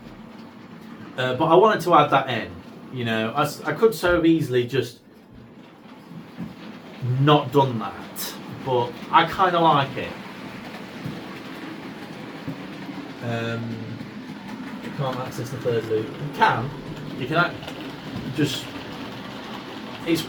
But I wanted to add that in. You know, I could so easily just not done that, but I kind of like it. You can't access the third loop. You can. You can just. It's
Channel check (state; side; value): identical; both; correlation 1.00